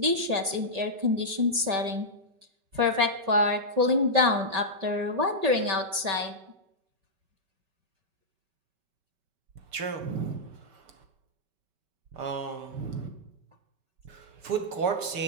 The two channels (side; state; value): left; late; 5.2 ms